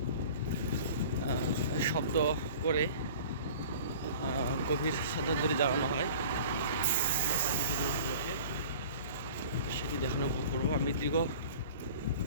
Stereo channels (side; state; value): both; inverted; correlation -0.43